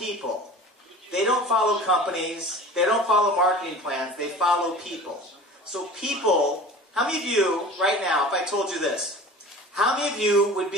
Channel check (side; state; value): both; normal; correlation 0.40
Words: They don't follow companies. They don't follow marketing plans. They follow people. So people, how many of you, right now, if I told you this, how many of you would